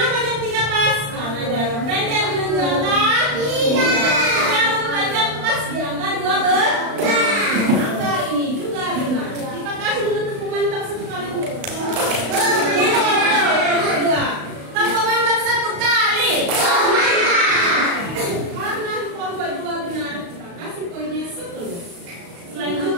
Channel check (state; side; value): late; left; 35 ms